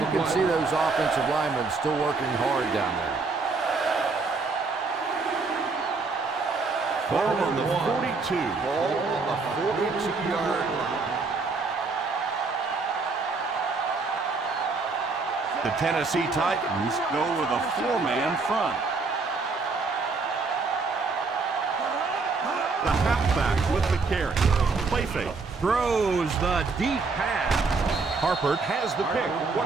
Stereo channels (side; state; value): left; quieter; 4.2 dB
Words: can see those offensive linemen still working hard down there. Ball on the 42. Ball on the 42-yard line. The Tennessee Titans go with a four-man front. The halfback with the carry. Play fake. Throws the deep pass. Harper has the pick.